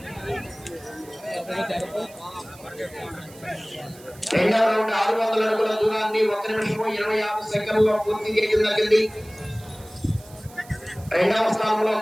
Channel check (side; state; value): right; noise; hiss, 22 dB below the sound